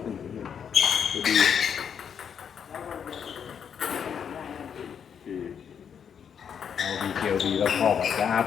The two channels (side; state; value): right; quieter; 7.7 dB